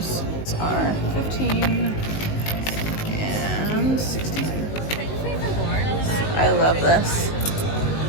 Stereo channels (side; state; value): right; late; 19 ms